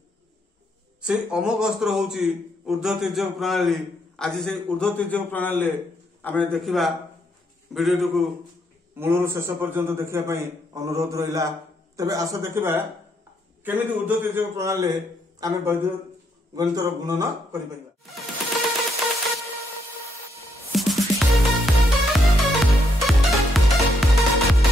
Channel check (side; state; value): both; normal; correlation 0.75